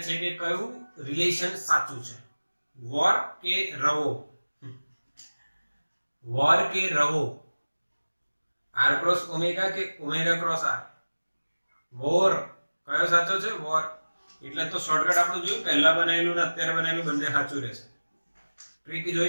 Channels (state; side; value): inverted; both; correlation -1.00